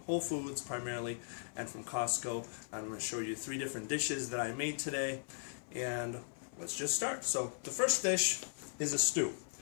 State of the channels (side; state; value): right; silent; 52 dB below the other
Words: Whole Foods primarily and from Costco. I'm going to show you 3 different dishes that I made today, and let's just start. So the first dish is a stew.